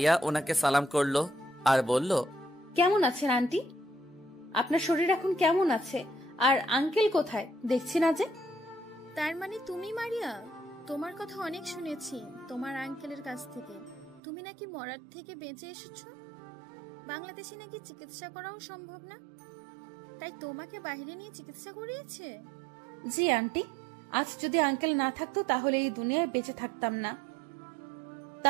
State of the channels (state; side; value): drops out; left; at 14.2 s